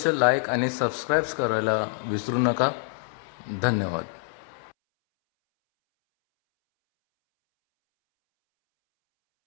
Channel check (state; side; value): silent; right; 61 dB below the other